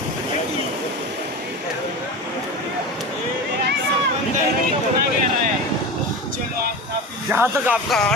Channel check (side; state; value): both; normal; correlation 0.27